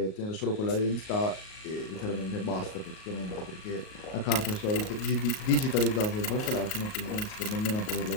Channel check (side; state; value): right; late; 38 ms